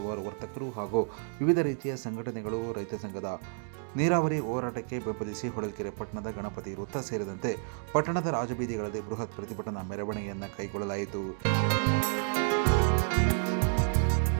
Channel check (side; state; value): left; silent; 57 dB below the other